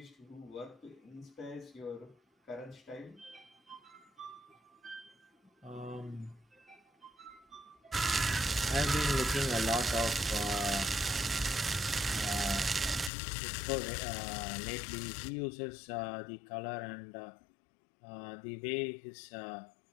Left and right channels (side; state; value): right; drops out; at 13.1 s